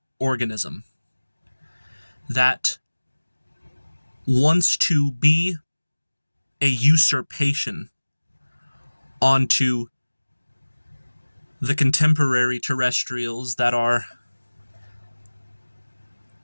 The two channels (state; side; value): inverted; both; correlation -1.00